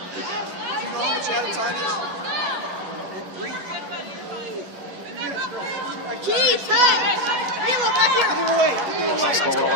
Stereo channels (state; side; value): late; left; 10 ms